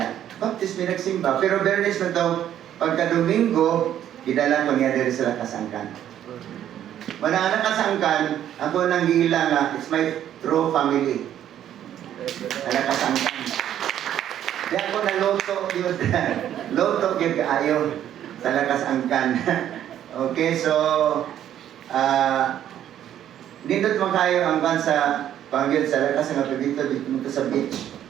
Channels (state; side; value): quieter; left; 10.9 dB